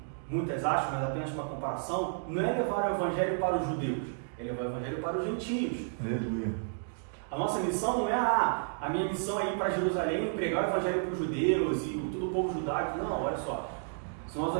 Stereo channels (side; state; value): left; silent; digital silence